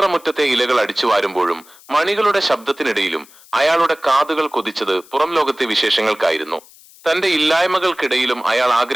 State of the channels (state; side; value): noise; left; hiss, 24 dB below the sound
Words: ഇലകൾ അടിച്ചു വാരുമ്പോഴും മണികളുടെ ശബ്ദത്തിനിടയിലും അയാളുടെ കാതുകൾ കൊതിച്ചത് പുറം ലോകത്തെ വിശേഷങ്ങൾക്കായിരുന്നു. തന്റെ ഇല്ലായ്മകൾക്കിടയിലും അയാൾ